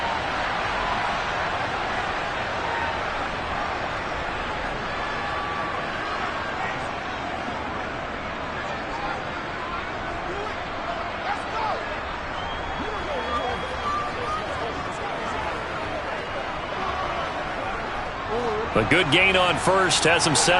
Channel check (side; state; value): both; identical; correlation 1.00